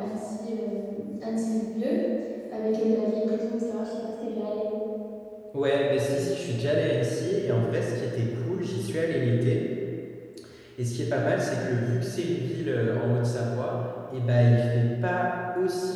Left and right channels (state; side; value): identical; both; correlation 1.00